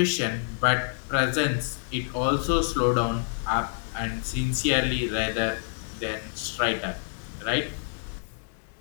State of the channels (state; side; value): silent; right; 60 dB below the other